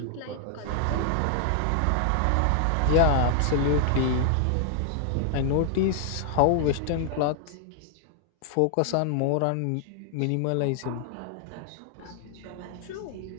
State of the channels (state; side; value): different; both; correlation 0.00